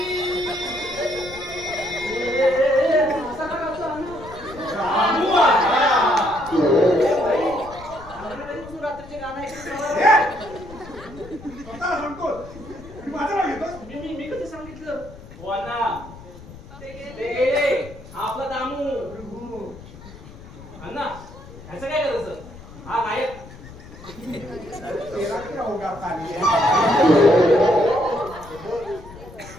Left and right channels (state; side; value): noise; left; rumble, 17 dB below the sound